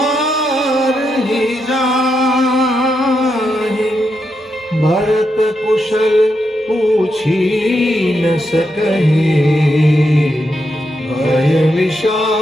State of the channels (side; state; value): both; normal; correlation 0.83